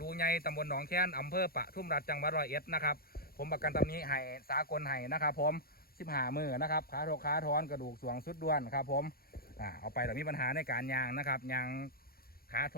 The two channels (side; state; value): right; late; 0.44 ms